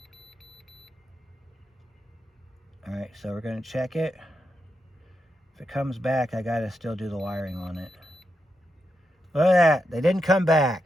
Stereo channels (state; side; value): normal; both; correlation 0.85